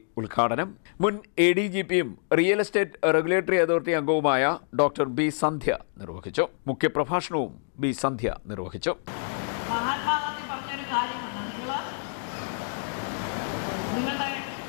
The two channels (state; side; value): silent; right; digital silence